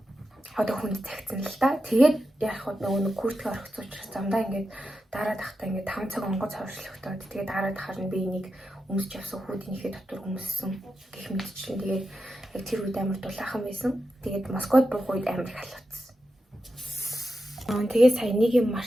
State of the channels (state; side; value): normal; both; correlation 0.89